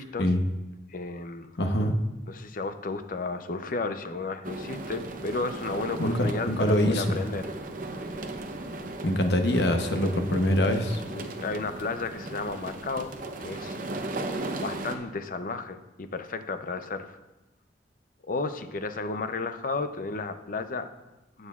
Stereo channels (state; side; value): normal; both; correlation 0.47